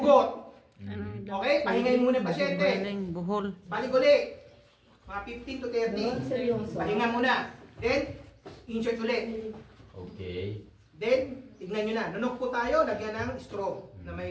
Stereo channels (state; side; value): identical; both; correlation 1.00